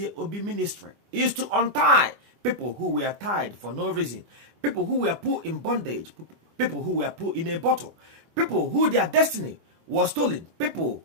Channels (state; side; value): late; left; 24 ms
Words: Obi ministry is to untie people who were tied for no reason, people who were put in bondage, people who were put in a bottle, people who their destiny was stolen, people